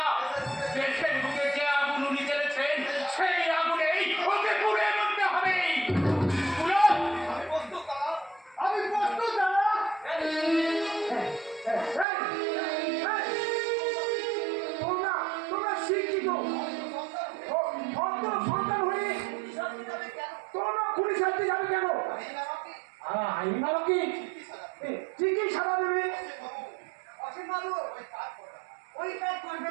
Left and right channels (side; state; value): left; drops out; at 12.1 s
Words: দেশের বুকে যে আগুন উনি জ্বেলেছেন, সেই আগুনেই ওকে পুড়ে মরতে হবে। আমি প্রস্তুত দাদা। তোমরা শিক্ষিত সন্তান হয়ে তোমরা পুলিশ হাতে যাবে কেন? আইন কি ঠিকই সারা দেবে। অসীম বাবু ওই কাজ